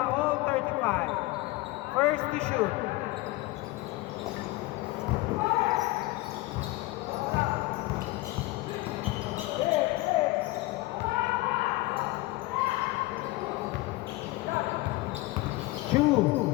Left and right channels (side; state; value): right; quieter; 20.4 dB